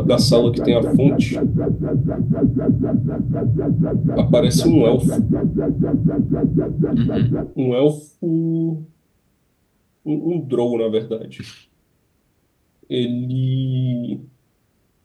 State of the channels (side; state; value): both; identical; correlation 1.00